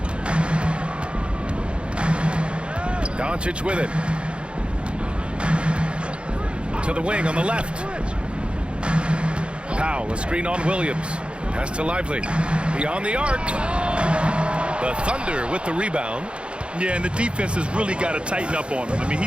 Doncic with it. To the wing on the left. Powell, a screen on Williams. Pass to Lively. Beyond the arc. The Thunder with the rebound. Yeah, and the defense has really got to tighten up on him. I mean,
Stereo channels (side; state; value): left; late; 0.057 ms